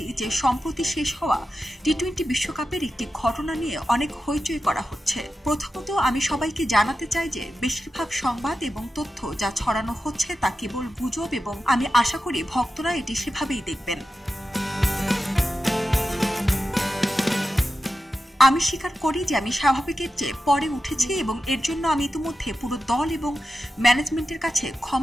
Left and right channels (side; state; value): both; normal; correlation 0.91